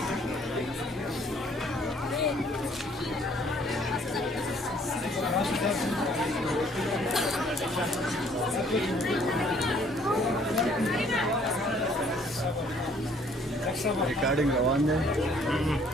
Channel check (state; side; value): normal; both; correlation 0.60